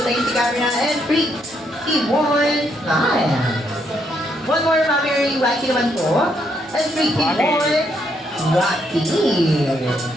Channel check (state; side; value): normal; both; correlation 0.75